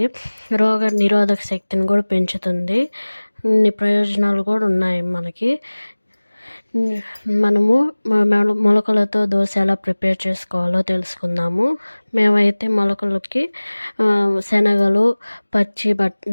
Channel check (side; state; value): both; inverted; correlation -1.00